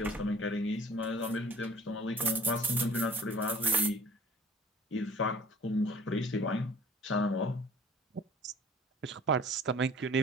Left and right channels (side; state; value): both; normal; correlation 0.49